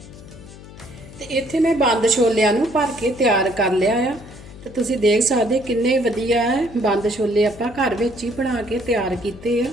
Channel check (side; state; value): left; noise; hum, 18 dB below the sound